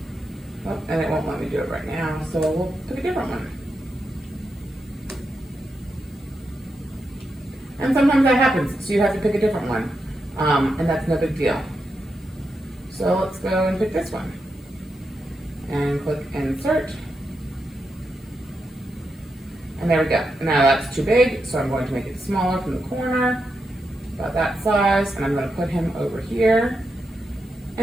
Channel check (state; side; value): normal; both; correlation 0.86